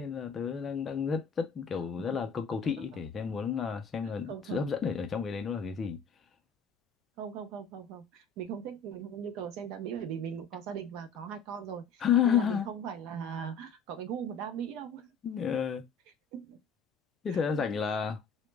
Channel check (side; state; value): right; quieter; 4.8 dB